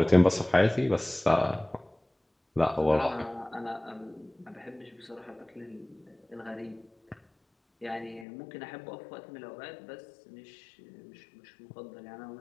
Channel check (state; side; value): drops out; right; at 8.2 s